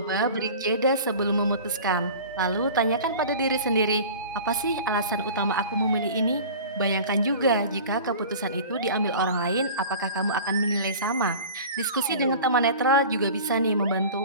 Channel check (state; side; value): inverted; both; correlation -0.39